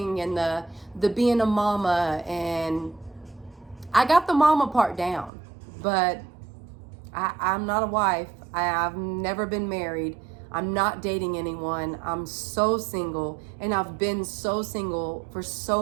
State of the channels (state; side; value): drops out; left; at 5.3 s